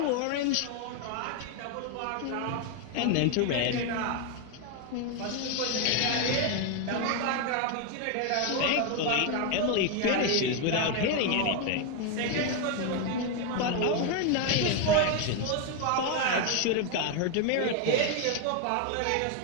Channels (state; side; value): different; both; correlation 0.01